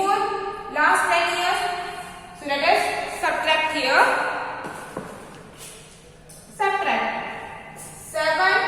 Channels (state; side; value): identical; both; correlation 1.00